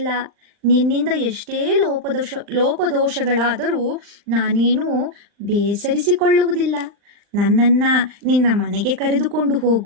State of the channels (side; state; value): left; late; 39 ms